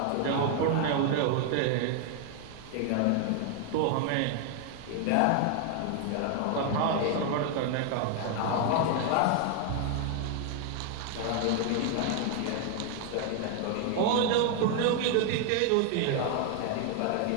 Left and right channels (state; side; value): different; both; correlation 0.00